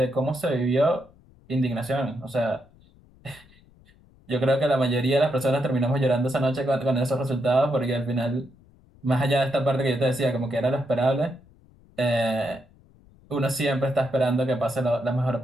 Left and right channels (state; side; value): noise; left; rumble, 28 dB below the sound